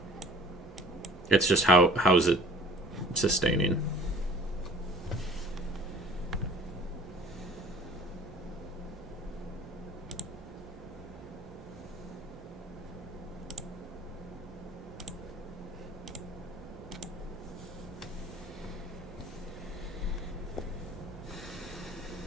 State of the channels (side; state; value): both; normal; correlation 0.49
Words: It's just how is it sustaining?